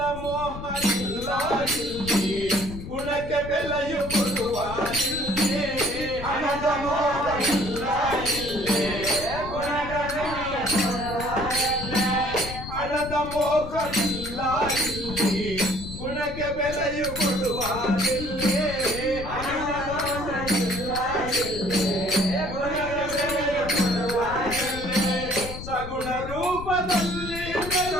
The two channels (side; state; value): left; noise; rumble, 10 dB below the sound